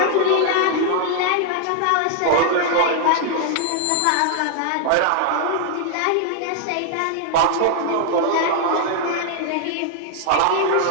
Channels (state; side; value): different; both; correlation 0.00